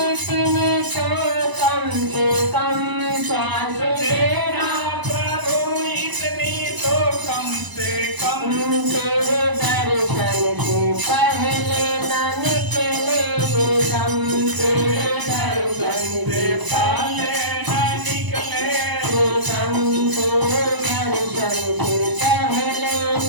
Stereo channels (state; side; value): late; left; 1.0 ms